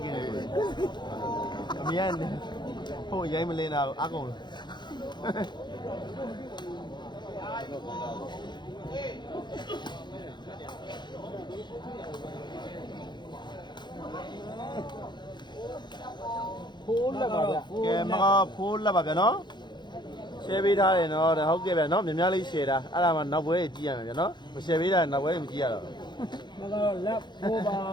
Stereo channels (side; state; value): right; late; 0.21 ms